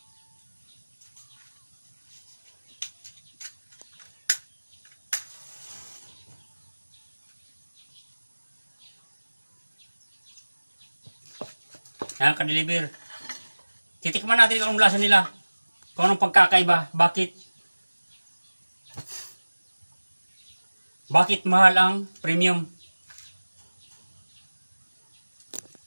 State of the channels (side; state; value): both; inverted; correlation -1.00